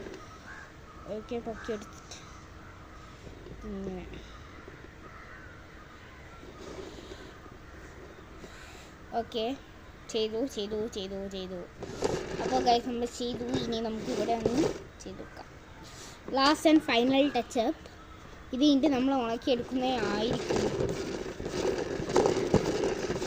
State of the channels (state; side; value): identical; both; correlation 1.00